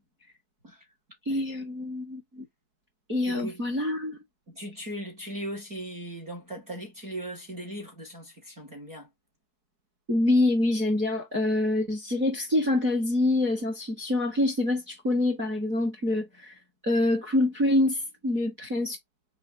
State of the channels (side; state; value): left; late; 4.7 ms